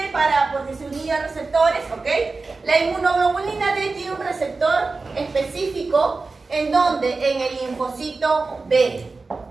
porque se unía a receptores? ¿Ok? La inmunoglobulina D tiene un receptor específico. ¿En dónde? En el linfocito B.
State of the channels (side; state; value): left; quieter; 3.9 dB